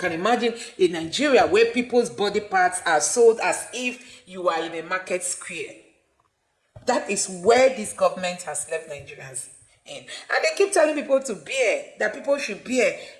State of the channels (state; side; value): identical; both; correlation 1.00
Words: imagine in Nigeria where people's body parts are sold as if you are in a market square. That is where this government has left Nigerians in. And they keep telling people to bear, that people should bear,